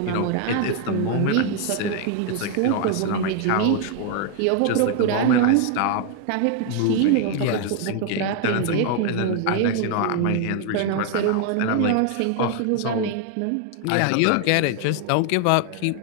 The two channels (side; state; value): both; different; correlation 0.00